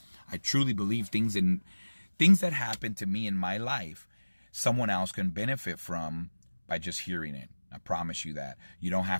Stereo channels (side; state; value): both; inverted; correlation -1.00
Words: I truly believe things that happen to me in my life, someone else can benefit from by just hearing it. I promise you that. You don't